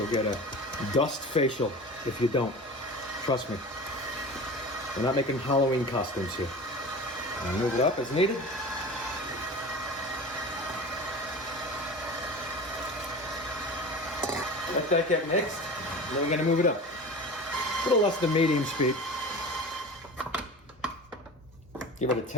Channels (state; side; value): normal; both; correlation 0.34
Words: get a dust facial if you don't. Trust me. We're not making Halloween costumes here. I'll move it up as needed. Let that get mixed, and then we're gonna move it up. A little less than medium speed. Give it a